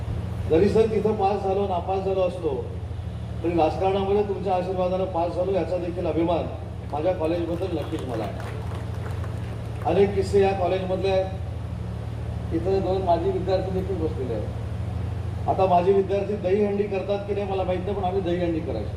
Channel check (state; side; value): identical; both; correlation 1.00